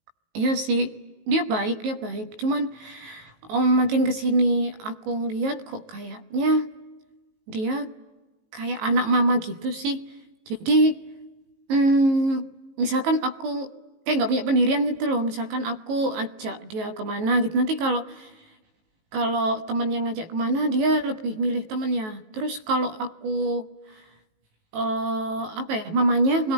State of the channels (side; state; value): left; late; 19 ms